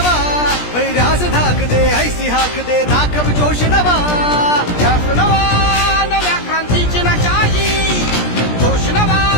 वैरास धाक दे ऐसी हाक दे दाखव जोश नवा ध्यास नवा नव्या क्रांतीची नशाही जोश नवा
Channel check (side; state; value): right; late; 17 ms